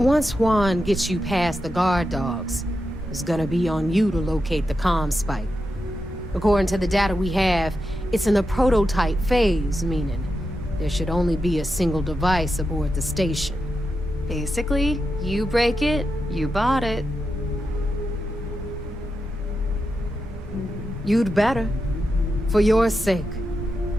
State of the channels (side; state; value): both; normal; correlation 0.88